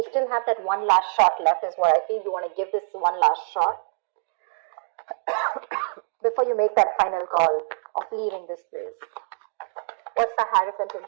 still have that one last shot left is what I feel. You want to give this one last shot before you make that final call of leaving this place. What's the Hierophant in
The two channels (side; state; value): left; silent; 62 dB below the other